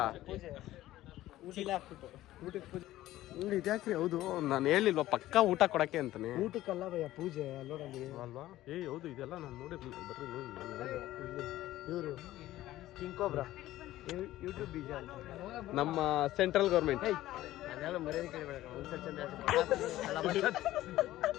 ಚೀಲ ಹಾಕ್ಬಿಟ್ಟು ಊಟಕ್ಕೆ ಪೂಜೆ ಇದ್ಯಾಕ್ರಿ? ಹೌದು ನಾನು ಹೇಳಿಲ್ವಾ ಪಕ್ಕ ಊಟ ಕೊಡಕ್ಕೆ ಅಂತಾನೆ. ಊಟಕ್ಕಲ್ಲ ಭಯ ಪೂಜೆ ಅಲ್ಲೋಡಲ್ಲಿ ಅಲ್ವಾ? ಹೌದು ಇದೆಲ್ಲ ನಾನು ನೋಡಿರ್ಲಿಲ್ಲ. ಬರ್ರಿ ನೋಡಿ. ಇವರು ಕಿಂಗ್ ಕೋಬ್ರಾ ಯೂಟ್ಯೂಬ್ ಬೀಜ ಅಂತ ನಮ್ಮ ಸೆಂಟ್ರಲ್ ಗೌರ್ಮೆಂಟ್. ಅದೆಲ್ಲ ಮರ್ಯಾದೆ ಕೇಳಬೇಡ.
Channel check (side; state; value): right; quieter; 15.2 dB